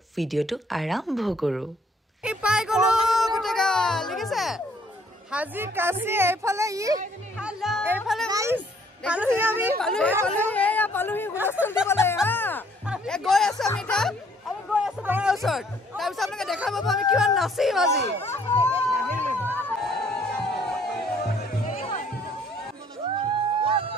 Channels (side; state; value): both; normal; correlation 0.62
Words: ভিডিঅটো আৰম্ভ কৰো এই পাই গলো গুটেগা লিখিছে হাজি কাছি এইফালে এইফালে পালুহি আমি পালুহি হুলস্থুল দিবলৈ গৈ আছো আমি গৈ আছো ঘৰৰ ওচৰত তাৰপিছত আপোনালোকে দেখা পাব আমি কিমান নাচিম আজি